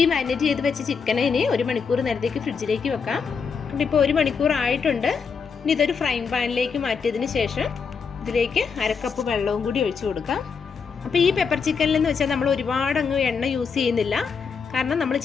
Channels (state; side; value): quieter; right; 5.8 dB